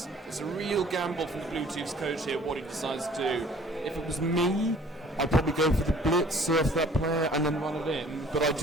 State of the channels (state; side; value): normal; both; correlation 0.53